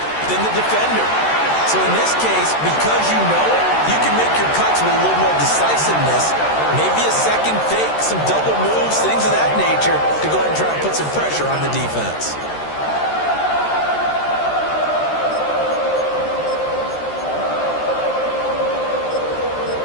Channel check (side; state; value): right; late; 13 ms